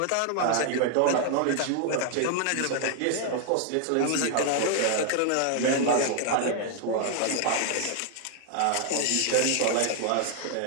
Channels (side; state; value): both; different; correlation 0.00